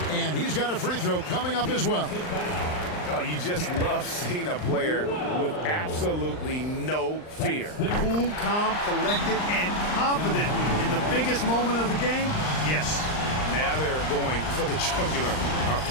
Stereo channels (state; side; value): late; right; 39 ms